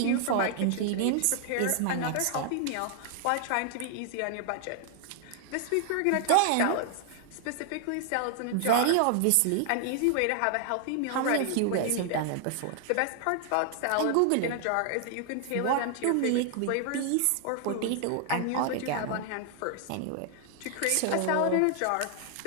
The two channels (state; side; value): different; both; correlation 0.00